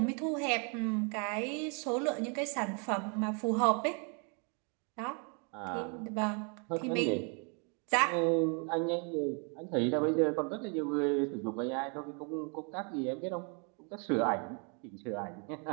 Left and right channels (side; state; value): left; quieter; 36.9 dB